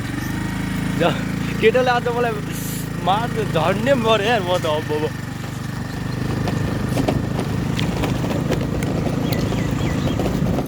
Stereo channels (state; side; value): identical; both; correlation 1.00